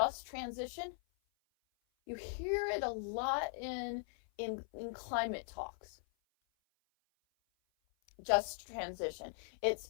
transition. You hear it a lot in climate talks. Just transition. It's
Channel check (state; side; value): silent; right; 51 dB below the other